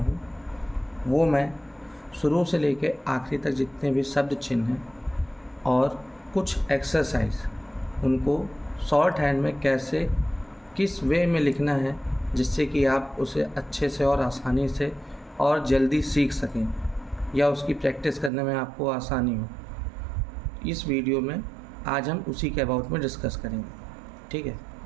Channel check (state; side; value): drops out; left; at 18.3 s